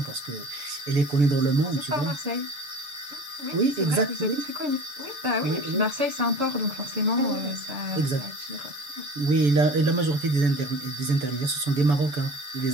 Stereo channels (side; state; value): left; late; 6.9 ms